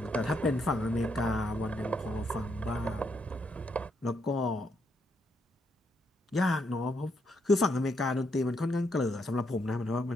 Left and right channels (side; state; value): both; normal; correlation 0.77